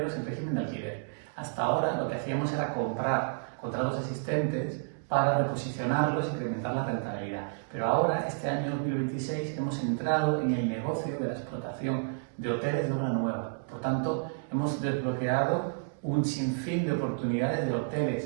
en régimen de alquiler. Hasta ahora lo que hacíamos era comprar contratos existentes para reposicionarlos e incrementar la rentabilidad. Pero ahora, este año 2026, hemos entrado en el negocio de la explotación de hoteles de obra nueva. Por tanto, hemos desbloqueado un sinfín de oportunidades de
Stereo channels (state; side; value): silent; left; digital silence